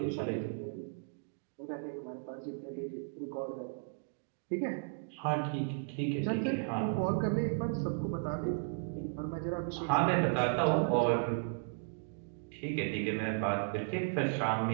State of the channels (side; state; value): left; silent; digital silence